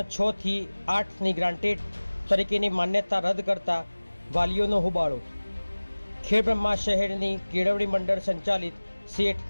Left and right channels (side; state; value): both; inverted; correlation -1.00